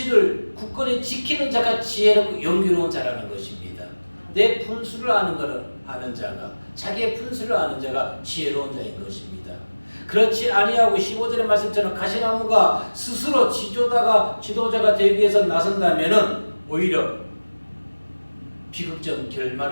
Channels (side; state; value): both; inverted; correlation -1.00